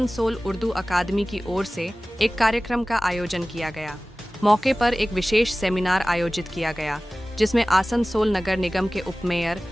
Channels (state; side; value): normal; both; correlation 0.97